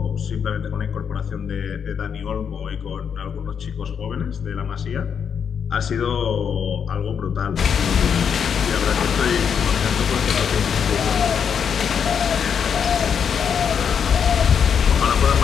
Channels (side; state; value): right; quieter; 7.3 dB